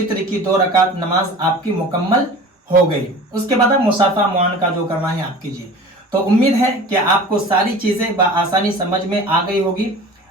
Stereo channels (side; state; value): both; normal; correlation 0.39